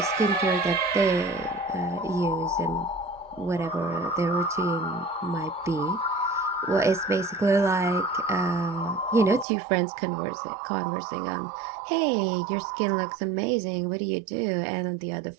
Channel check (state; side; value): drops out; left; at 9.5 s